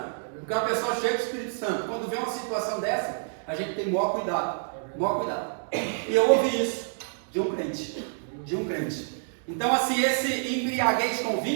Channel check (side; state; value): left; silent; digital silence